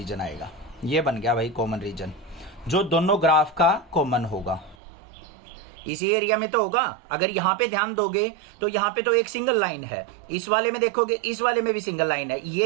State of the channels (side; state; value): left; drops out; at 4.8 s